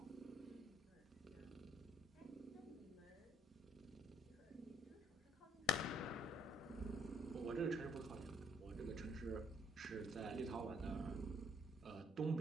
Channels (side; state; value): both; normal; correlation 0.64